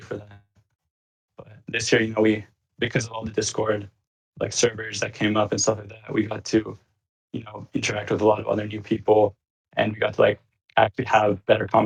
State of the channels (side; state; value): both; identical; correlation 1.00